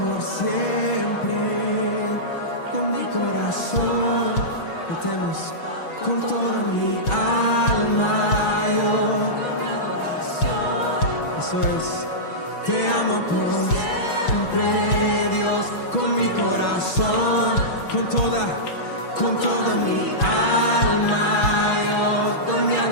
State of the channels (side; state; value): right; late; 6.2 ms